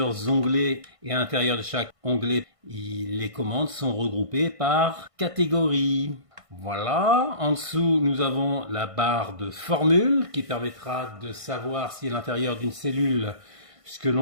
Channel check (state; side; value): late; left; 1.5 ms